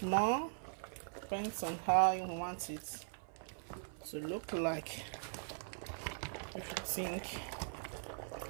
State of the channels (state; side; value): silent; left; 51 dB below the other